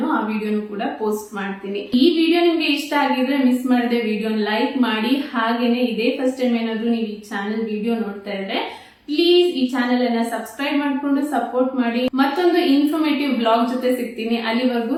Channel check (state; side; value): identical; both; correlation 1.00